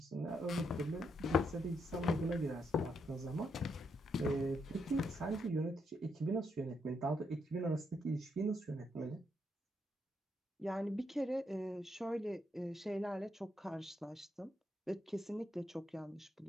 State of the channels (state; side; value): normal; both; correlation 0.78